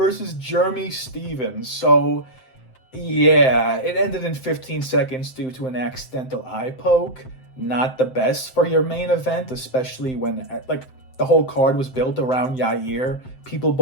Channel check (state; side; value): late; right; 7.7 ms